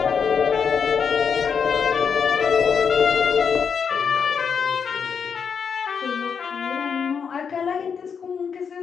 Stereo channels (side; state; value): right; quieter; 6.5 dB